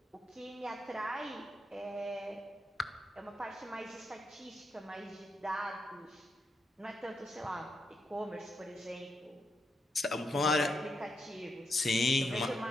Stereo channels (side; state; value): both; normal; correlation 0.82